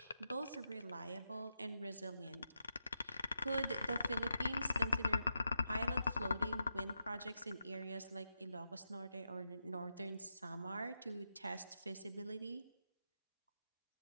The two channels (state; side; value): inverted; both; correlation -0.86